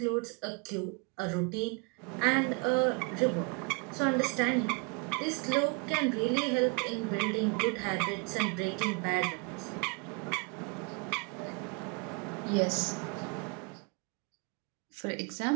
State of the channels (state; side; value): quieter; left; 31.0 dB